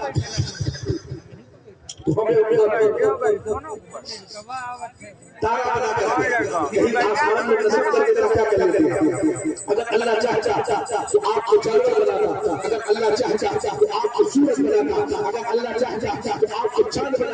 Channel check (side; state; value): both; identical; correlation 1.00